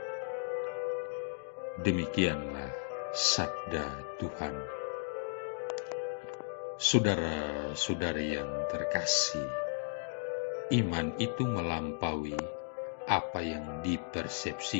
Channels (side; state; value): right; silent; digital silence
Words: Demikianlah sabda Tuhan. Saudara-saudari yang terkasih, iman itu melampaui apa yang